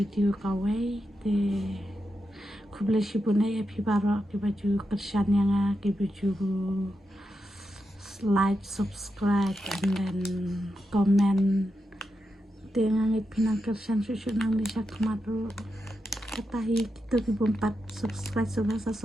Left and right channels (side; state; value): both; normal; correlation 0.87